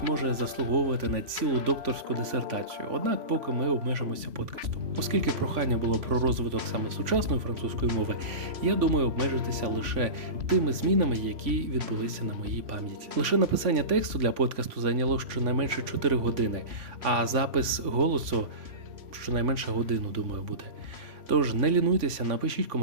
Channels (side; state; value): left; late; 3.5 ms